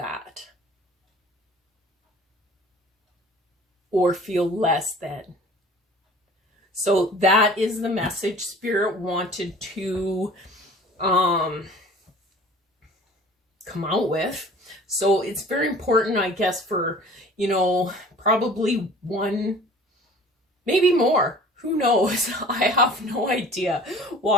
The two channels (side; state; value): both; normal; correlation 0.46